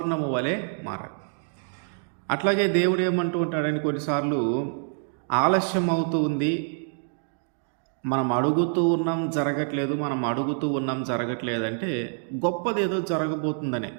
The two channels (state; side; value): silent; left; 57 dB below the other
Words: వలె మారాలి. అట్లాగే దేవుడు ఏమంటూ ఉంటాడని కొన్నిసార్లు ఆలస్యం అవుతూ ఉంది, మనం అడుగుతూ ఉన్నాం జరగట్లేదు, అంటే గొప్పదేదో జరగబోతుందనే.